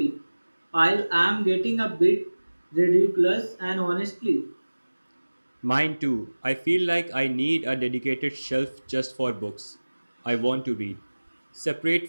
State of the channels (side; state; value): both; inverted; correlation -1.00